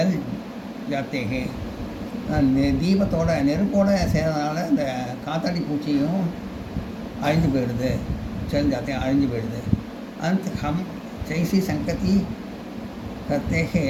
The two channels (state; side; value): identical; both; correlation 1.00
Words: जाते हैं. தீபத்தோட நெருப்போட சேர்றதுனால இந்த காத்தாடி பூச்சியும் அழிஞ்சு போயிடுது. चल जाते हैं, अழிஞ்சு போயிடுது. अंत हम जैसी संगति करते हैं